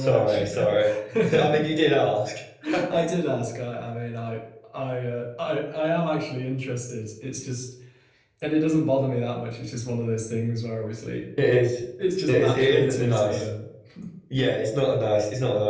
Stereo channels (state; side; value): identical; both; correlation 1.00